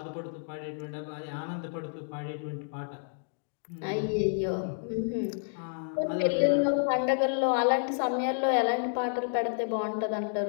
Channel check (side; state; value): right; silent; digital silence